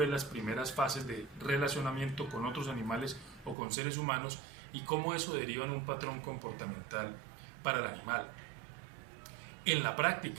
las primeras fases de relacionamiento con otros animales o con seres humanos? Y cómo eso deriva en un patrón comportamental para el animal. En la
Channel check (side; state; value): left; drops out; at 3.6 s